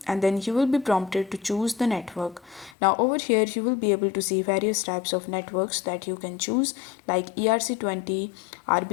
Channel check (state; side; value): drops out; right; at 2.8 s